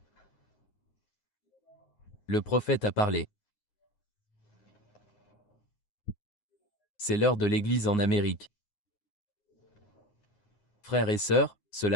le prophète a parlé. C'est l'heure de l'Église en Amérique. Frères et sœurs,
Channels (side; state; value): right; late; 9.6 ms